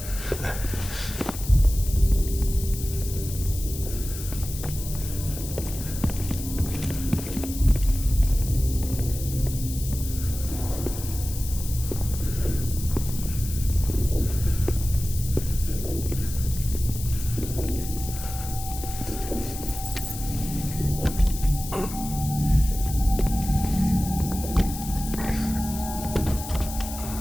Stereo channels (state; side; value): noise; left; hiss, 10 dB below the sound